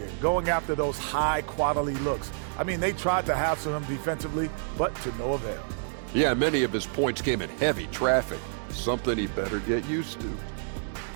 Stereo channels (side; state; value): left; silent; digital silence